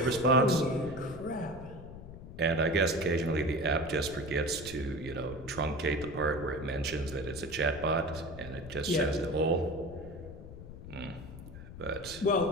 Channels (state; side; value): noise; left; rumble, 13 dB below the sound